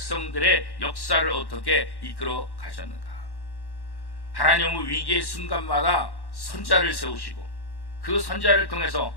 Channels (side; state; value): right; late; 1.1 ms